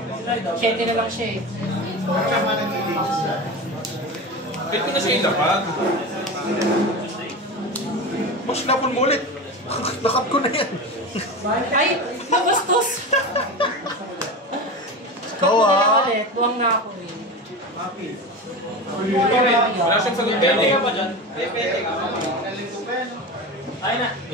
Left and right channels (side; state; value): both; normal; correlation 0.26